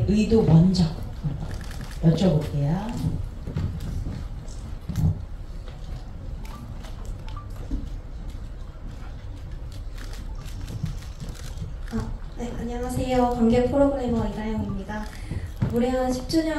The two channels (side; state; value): both; identical; correlation 1.00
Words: 의도 먼저 여쭤볼게요. 네, 안녕하세요. 관객 프로그래머 이다영입니다. 무례한